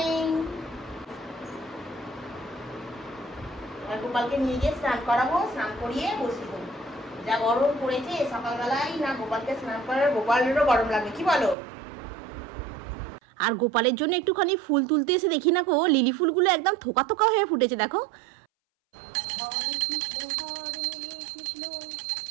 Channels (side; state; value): left; drops out; at 11.6 s